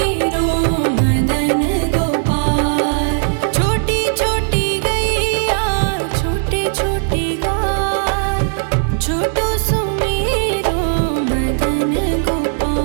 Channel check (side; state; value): left; silent; digital silence